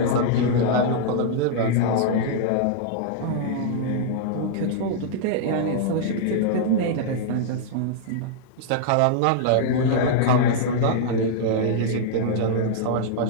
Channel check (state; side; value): different; both; correlation -0.02